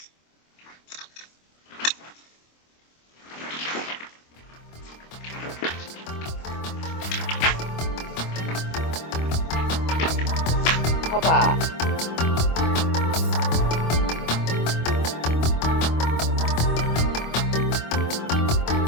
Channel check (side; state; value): right; late; 25 ms